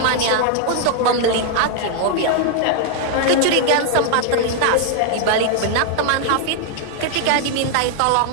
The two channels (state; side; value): different; both; correlation 0.00